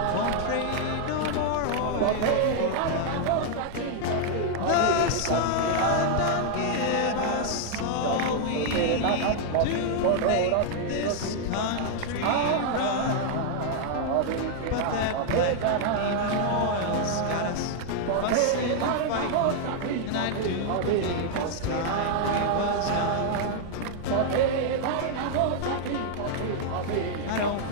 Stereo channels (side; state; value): both; different; correlation 0.00